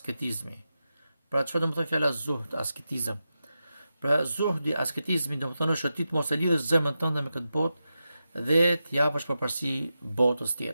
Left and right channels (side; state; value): both; inverted; correlation -0.90